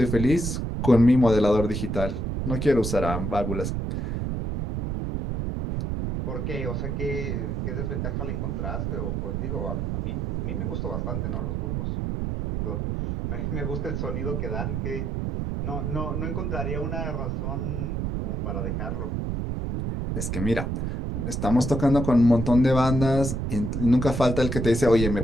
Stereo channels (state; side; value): noise; right; rumble, 2 dB below the sound